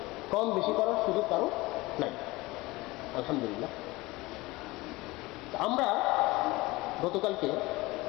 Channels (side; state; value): right; quieter; 21.2 dB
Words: কম বেশি করার সুযোগ কারো নাই, আলহামদুলিল্লাহ। আমরা গতকালকে